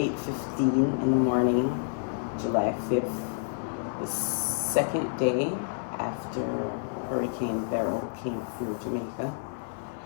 in the morning, July 5th, the second day after Hurricane Beryl came through Jamaica,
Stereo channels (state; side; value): silent; right; 59 dB below the other